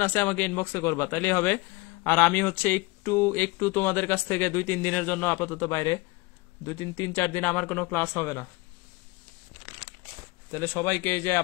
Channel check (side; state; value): right; quieter; 24.4 dB